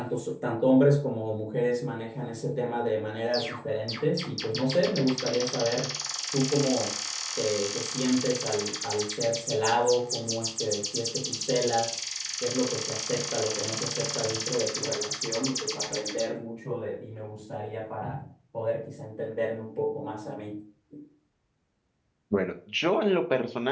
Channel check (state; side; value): identical; both; correlation 1.00